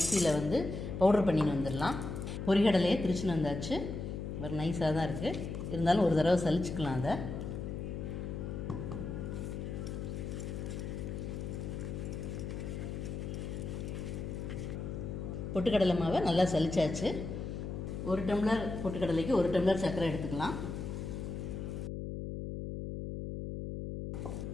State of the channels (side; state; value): left; noise; hum, 5 dB below the sound